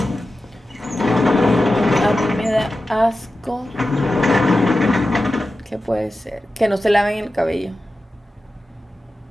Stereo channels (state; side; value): normal; both; correlation 0.93